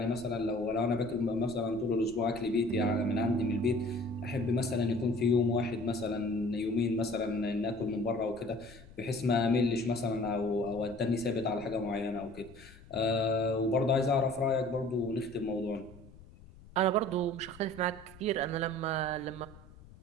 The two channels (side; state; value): left; noise; rumble, 21 dB below the sound